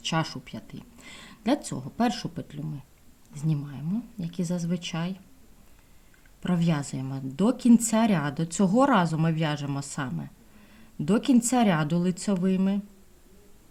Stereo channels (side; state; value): both; identical; correlation 1.00